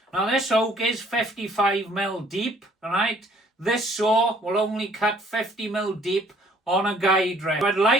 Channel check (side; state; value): both; normal; correlation 0.59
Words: Now this oak is 55mm deep, alright? This saw will only cut 50mm deep on a guide rail. I'd